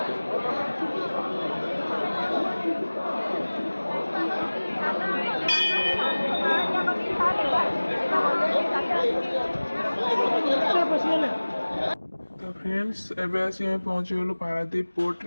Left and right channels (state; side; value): inverted; both; correlation -1.00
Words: तो फ्रेंड्स एबे आसी हम पहुंची गलु पारादीप पोर्ट